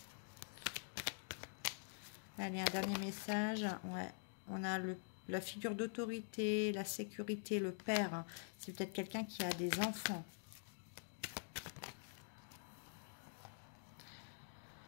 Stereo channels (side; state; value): right; silent; digital silence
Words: Allez, un dernier message. Ouais, on a la figure d'autorité, la sécurité, le père. C'est peut-être quelqu'un qui a des enfants.